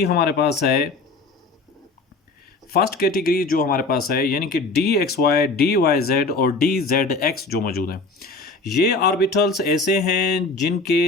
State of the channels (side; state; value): right; quieter; 3.6 dB